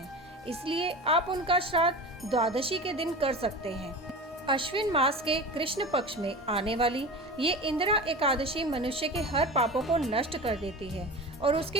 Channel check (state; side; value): normal; both; correlation 0.31